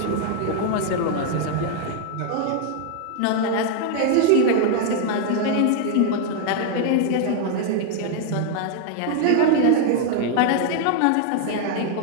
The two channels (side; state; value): both; different; correlation 0.00